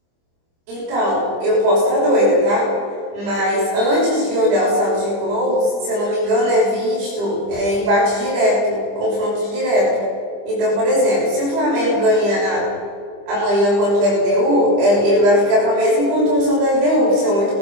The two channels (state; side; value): late; left; 25 ms